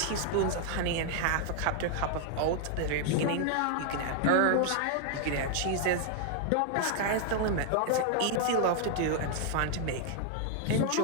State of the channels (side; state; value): both; different; correlation 0.00